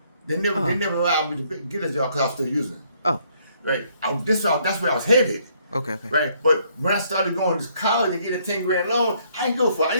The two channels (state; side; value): inverted; both; correlation -0.68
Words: They never allowed me to get a job because I was still using it. Oh, right. That's where I was headed. Okay. Right, but when I started going to college and getting a 10 grand loan, I didn't go for